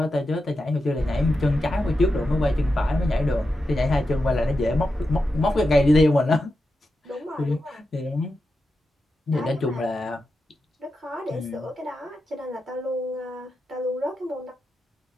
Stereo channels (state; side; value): normal; both; correlation 0.89